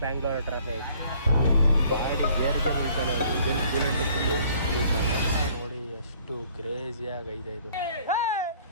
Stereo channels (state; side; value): inverted; both; correlation -0.58